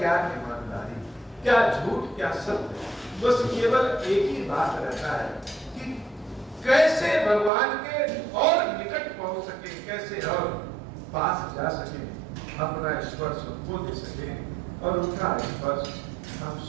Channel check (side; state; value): left; drops out; at 7.5 s